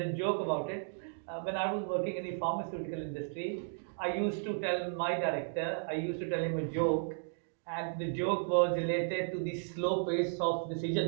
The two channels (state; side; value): silent; left; digital silence